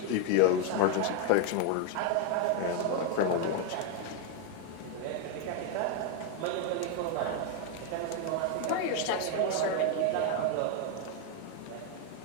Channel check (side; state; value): both; different; correlation 0.01